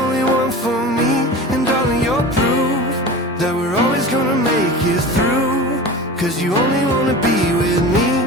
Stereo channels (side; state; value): both; normal; correlation 0.33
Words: one for me. And darling, you're proof that we're always gonna make it through. 'Cause you only wanna be with me,